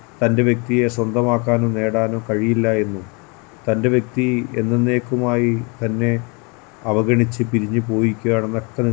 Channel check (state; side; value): quieter; right; 31.8 dB